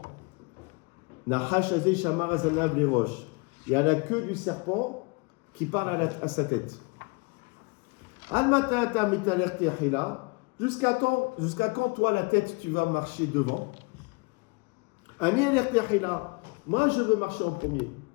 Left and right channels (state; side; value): quieter; right; 31.0 dB